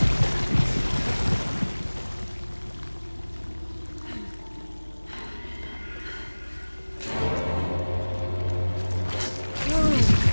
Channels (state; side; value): inverted; both; correlation -1.00